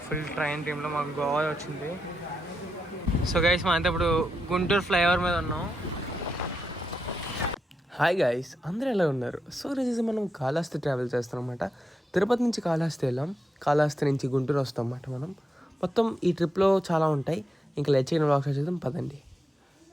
ఫుల్ ట్రైన్ టీంలో మాకు గోవా వచ్చింది. సో గైస్ మా అంతా ఇప్పుడు గుంటూరు ఫ్లైఓవర్ మీద ఉన్నాం. హాయ్ గైస్, అందరూ ఎలా ఉన్నారు? సో రోజు మనం కాళహస్తి ట్రావెల్ చేస్తాం అనమాట. తిరుపతి నుంచి కాళహస్తి వెళ్ళాం, కాళహస్తి నుంచి గుంటూరు వస్తాం అన్నమాట. మనం మొత్తం ఈ ట్రిప్లో చాలా ఉంటాయి. ఇంకా లెచ్చిన వ్లాగ్స్ చేద్దాం పదండి.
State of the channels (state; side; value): normal; both; correlation 0.85